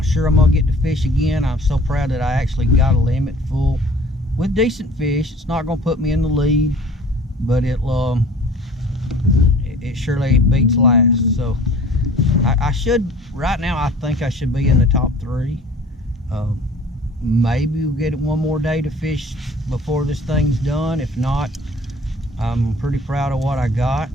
sure I'm gonna get to fish again. I'm so proud that I actually got a limit full with decent fish. It's not gonna put me in the lead, but it surely beats last. So I should, right now, I think I should be in the top 3. Maybe we'll get one more day to fish before this thing's done. If not, I'm pretty proud of what I got.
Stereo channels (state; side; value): normal; both; correlation 0.48